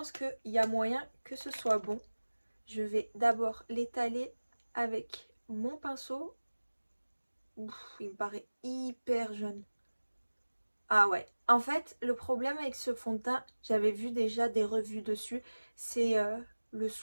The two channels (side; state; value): both; inverted; correlation -1.00